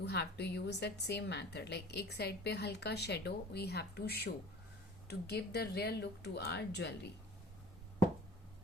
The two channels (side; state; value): both; normal; correlation 0.44